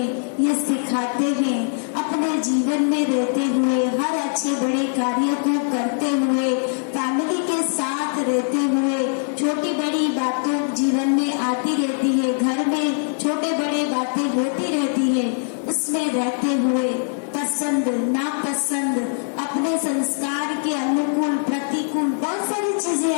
ये सिखाते हैं, अपने जीवन में रहते हुए, हर अच्छे बड़े कार्य को करते हुए, फैमिली के साथ रहते हुए, छोटी बड़ी बातों जीवन में आती रहती है, घर में छोटे बड़े बातें होती रहती है, उसमें रहते हुए पसंद नापसंद, अपने संस्कार के अनुकूल प्रतिकूल बहुत सारी चीजें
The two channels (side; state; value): right; silent; digital silence